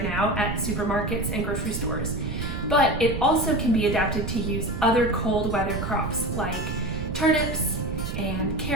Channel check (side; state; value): right; noise; rumble, 4 dB below the sound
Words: now at supermarkets and grocery stores, but it also can be adapted to use other cold weather crops like turnips and